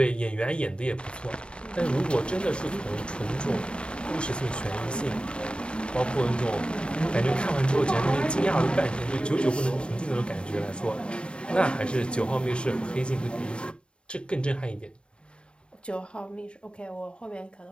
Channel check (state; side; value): late; right; 0.054 ms